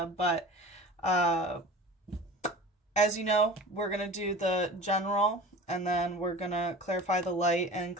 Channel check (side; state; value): both; normal; correlation 0.38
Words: But as you know, we're going to do the general, and then we're going to clarify the light and